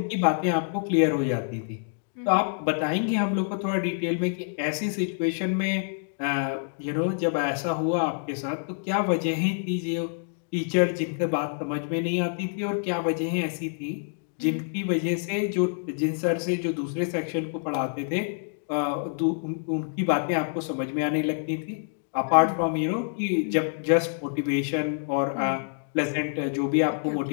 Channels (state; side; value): silent; right; digital silence